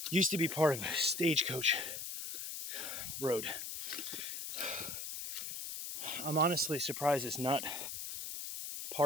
used to be part of a stagecoach road. I'm honestly surprised it's not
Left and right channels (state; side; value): noise; left; hiss, 6 dB below the sound